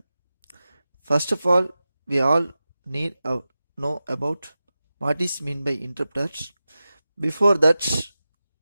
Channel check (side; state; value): both; inverted; correlation -0.94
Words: First of all, we all need to know about what is meant by interpreters. Before that,